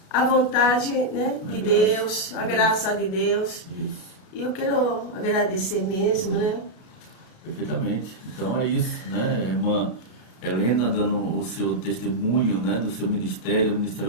a vontade, né, de Deus, a graça de Deus. Isso. E eu quero agradecer mesmo, né? Perfeitamente. Então é isso, né? Irmã Helena dando o seu testemunho, né, do seu ministério, o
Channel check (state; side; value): late; right; 32 ms